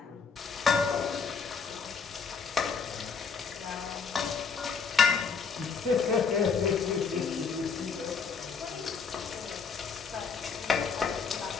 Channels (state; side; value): quieter; right; 5.6 dB